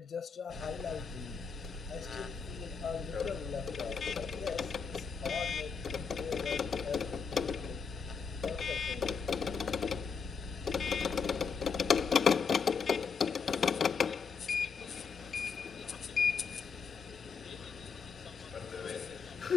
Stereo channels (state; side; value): quieter; right; 5.7 dB